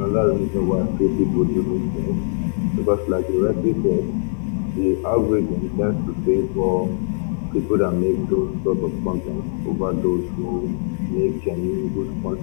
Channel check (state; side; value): silent; right; 57 dB below the other